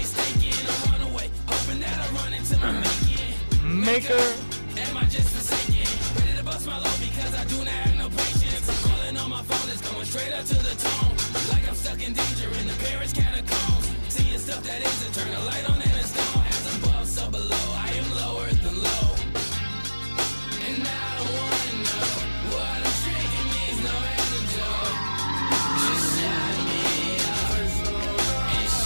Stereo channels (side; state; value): both; inverted; correlation -1.00